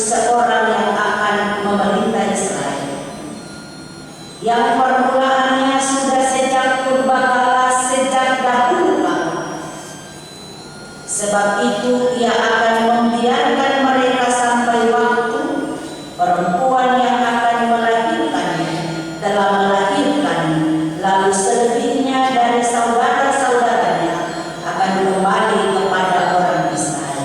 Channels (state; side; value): identical; both; correlation 1.00